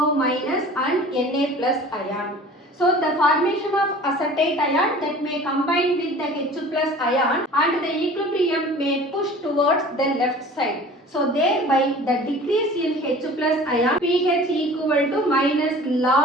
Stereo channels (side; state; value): both; normal; correlation 0.44